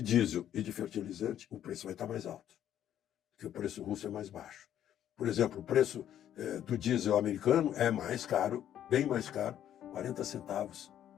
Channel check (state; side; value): quieter; right; 10.8 dB